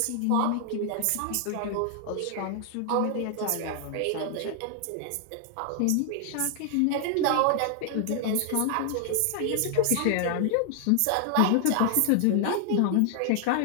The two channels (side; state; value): both; different; correlation 0.00